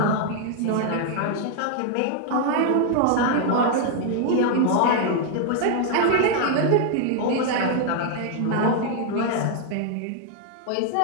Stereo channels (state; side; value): different; both; correlation 0.00